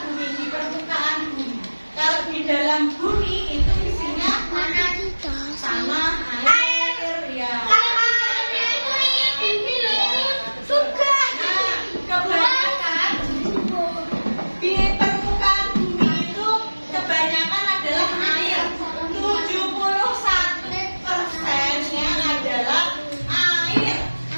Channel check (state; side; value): inverted; both; correlation -1.00